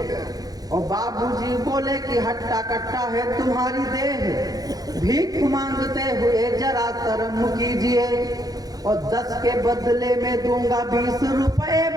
और बाबूजी बोले कि हट्टा कट्टा है तुम्हारी देह, भीख मांगते हुए जरा शर्म कीजिए, और 10 के बदले में दूंगा 20 रुपए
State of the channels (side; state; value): left; late; 0.18 ms